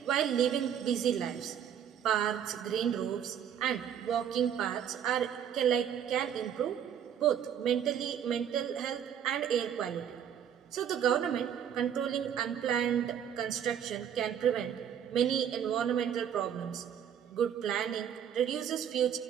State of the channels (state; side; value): quieter; left; 9.0 dB